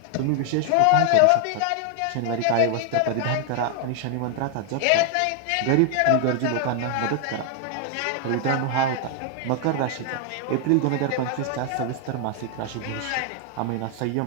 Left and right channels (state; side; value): different; both; correlation 0.00